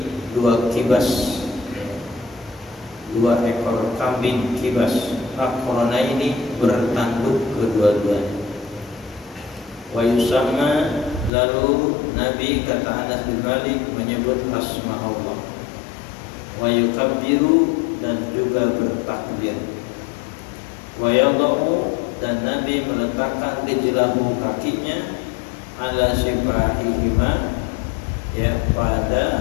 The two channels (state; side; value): drops out; right; at 11.3 s